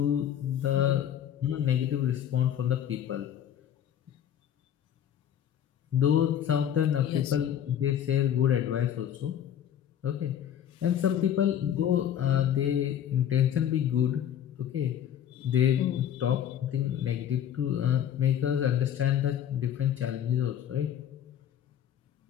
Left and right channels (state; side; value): quieter; right; 10.0 dB